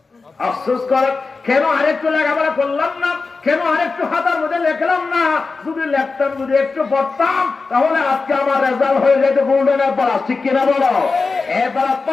আফসোস করে, কেন আরেকটু লেখাপড়া করলাম না, কেন আরেকটু হাতার মধ্যে লেখলাম না। যদি লেখতাম, যদি একটু পড়তাম, তাহলে আজকে আমার রেজাল্ট হয়ে যেত গোল্ডেন প্লাস, ঠিক কিনা বলো? এবার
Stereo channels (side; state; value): right; quieter; 4.2 dB